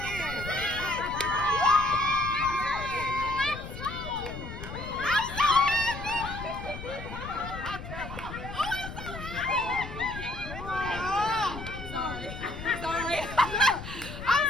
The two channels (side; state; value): left; noise; rumble, 10 dB below the sound